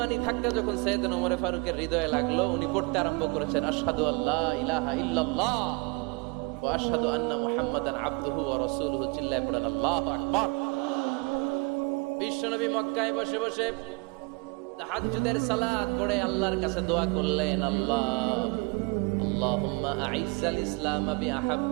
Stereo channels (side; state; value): left; quieter; 29.3 dB